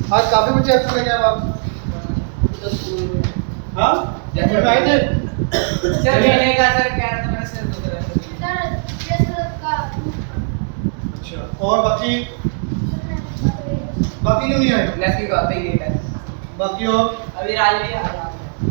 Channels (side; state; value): left; silent; 67 dB below the other